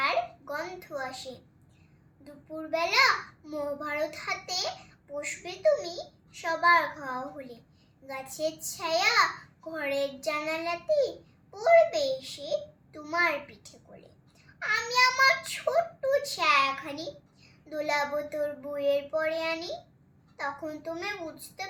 গন্ধ আসে। দুপুরবেলা মহাভারত হাতে বসবে তুমি সবার খাওয়া হলে। গাছের ছায়া ঘরের জানালাতে পড়বে এসে তোমার পিঠে কোলে। আমি আমার ছোট্ট ছায়াখানি দোলাবো তোর বইয়ের পরে আনি। তখন তুমি বুঝতে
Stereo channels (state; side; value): identical; both; correlation 1.00